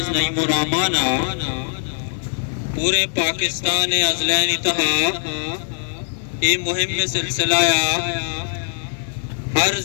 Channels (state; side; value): silent; right; 65 dB below the other